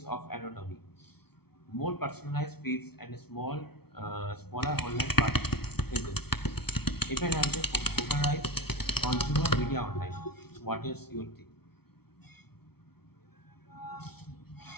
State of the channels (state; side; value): late; right; 0.95 ms